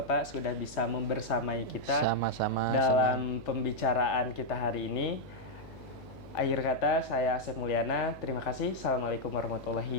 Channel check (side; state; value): left; noise; hum, 18 dB below the sound